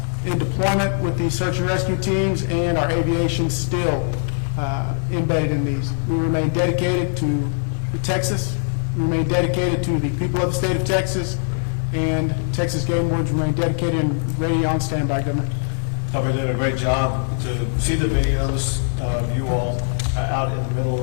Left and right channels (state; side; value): silent; right; digital silence